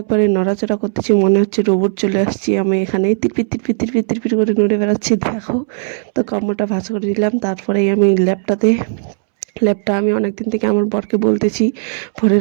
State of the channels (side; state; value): left; silent; 69 dB below the other